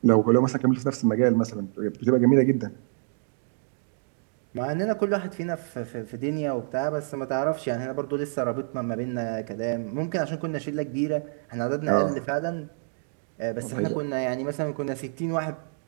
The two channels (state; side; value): silent; left; digital silence